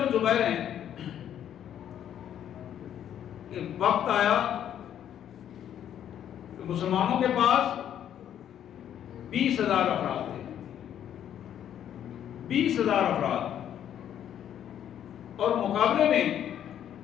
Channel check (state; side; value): quieter; right; 10.1 dB